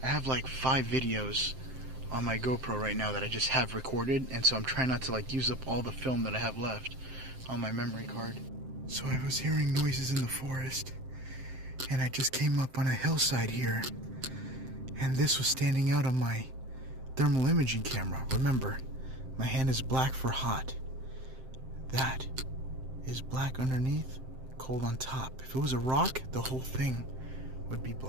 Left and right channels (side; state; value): left; late; 7.7 ms